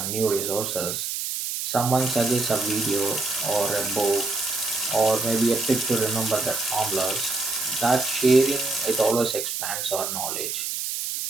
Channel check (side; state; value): right; noise; hiss, 3 dB below the sound